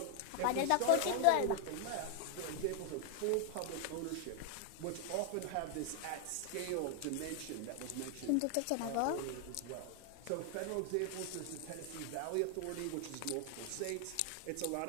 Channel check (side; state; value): both; different; correlation 0.00